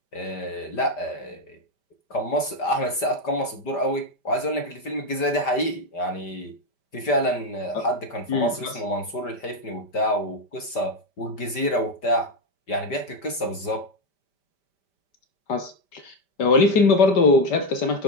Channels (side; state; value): right; late; 5.1 ms